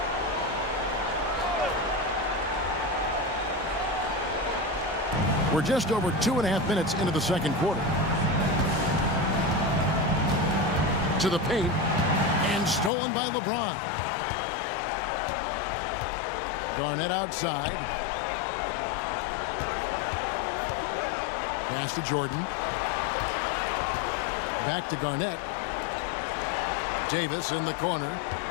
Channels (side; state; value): right; drops out; at 12.9 s